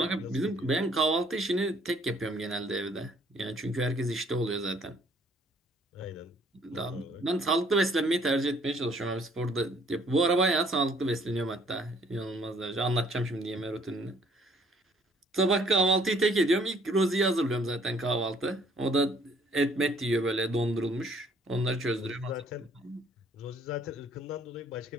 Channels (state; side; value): normal; both; correlation 0.61